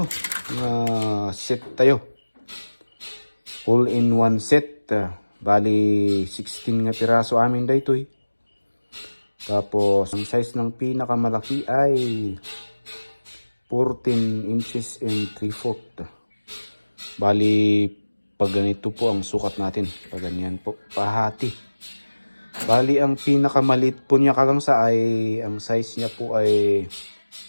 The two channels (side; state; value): both; inverted; correlation -1.00